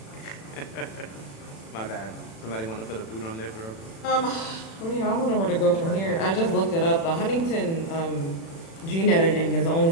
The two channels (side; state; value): right; late; 36 ms